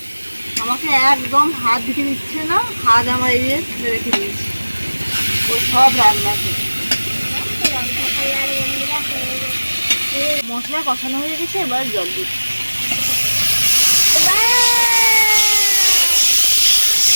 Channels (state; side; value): inverted; both; correlation -1.00